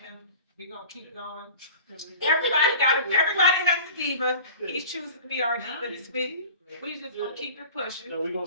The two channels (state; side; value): inverted; both; correlation -0.41